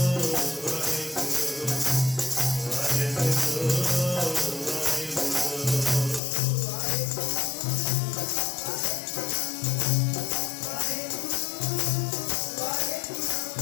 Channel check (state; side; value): drops out; right; at 6.2 s